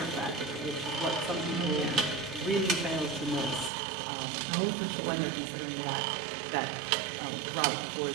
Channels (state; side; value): drops out; left; at 3.7 s